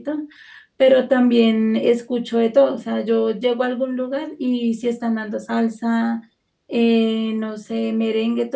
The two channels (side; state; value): both; identical; correlation 1.00